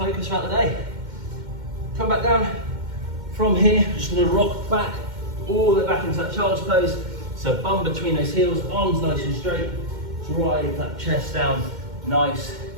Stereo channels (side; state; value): left; late; 2.1 ms